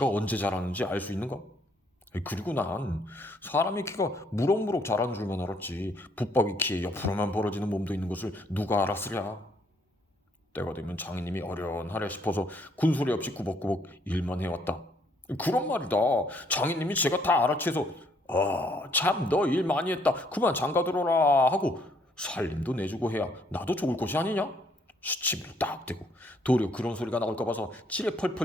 언제 자라는지 알 수 있는가? 그리고 난 사람의 키가 무럭무럭 자라는 줄만 알았지 붙박이 키에 옆으로만 벌어지는 몸도 있는 것을 누가 알았으랴. 때가 되면 장인님이 어련하랴 싶어서 군소리 없이 꾸벅꾸벅 일만 해왔다. 그런 말이다. 장인님이 제가 다 알아채서 참 너 일 많이 했다 그만 장가들어라 하고 살림도 내주고 해야 나도 좋을 것이 아니냐? 시치미로 딱 대고 도리어 그런 소리가 나올까 봐서 지레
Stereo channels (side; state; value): both; normal; correlation 0.67